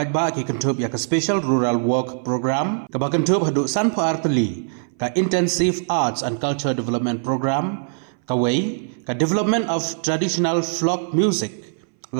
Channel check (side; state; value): left; silent; 60 dB below the other